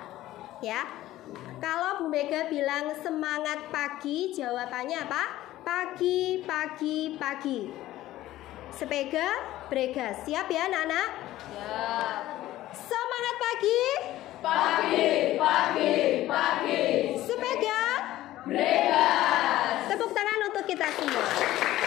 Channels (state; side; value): quieter; right; 15.1 dB